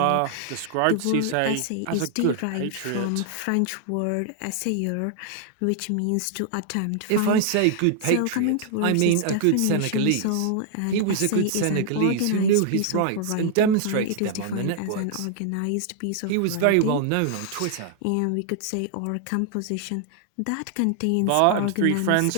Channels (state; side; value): different; both; correlation 0.00